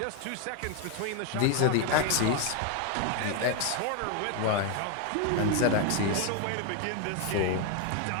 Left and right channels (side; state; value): both; different; correlation 0.01